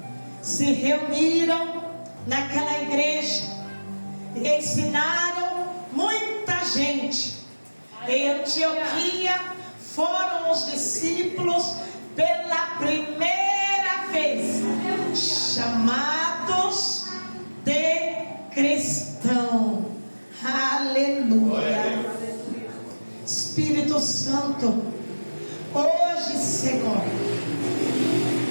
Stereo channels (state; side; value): inverted; both; correlation -1.00